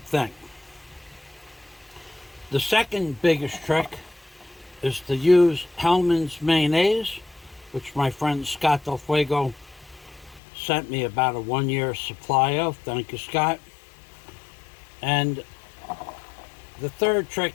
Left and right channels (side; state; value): right; drops out; at 10.4 s